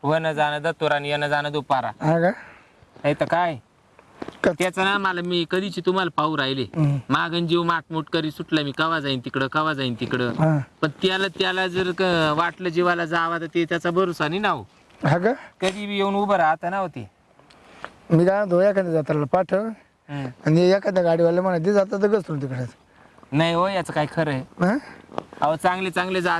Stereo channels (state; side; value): identical; both; correlation 1.00